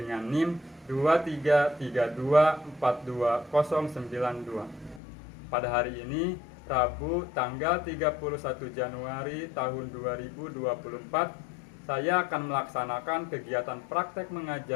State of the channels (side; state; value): right; drops out; at 5.0 s